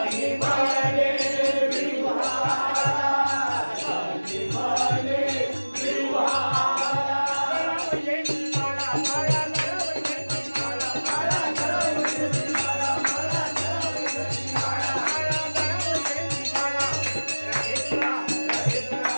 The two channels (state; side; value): inverted; both; correlation -1.00